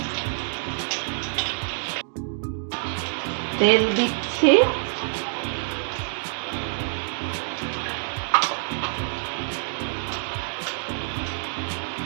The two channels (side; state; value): left; silent; digital silence